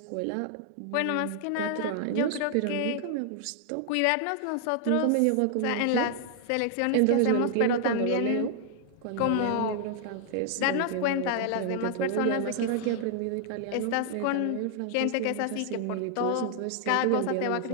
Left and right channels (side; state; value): both; different; correlation 0.00